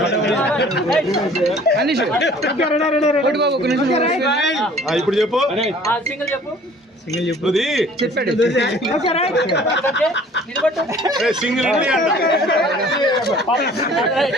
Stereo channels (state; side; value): normal; both; correlation 0.51